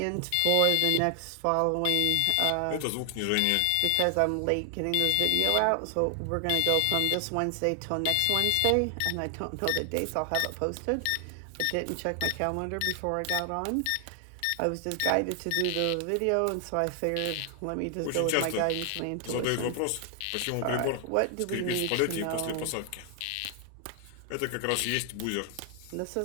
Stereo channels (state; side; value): different; both; correlation 0.00